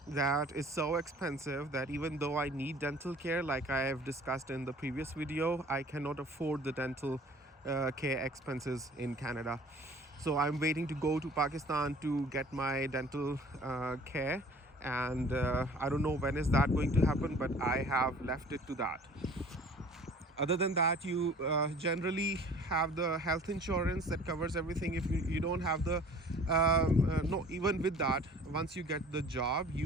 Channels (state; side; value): normal; both; correlation 0.49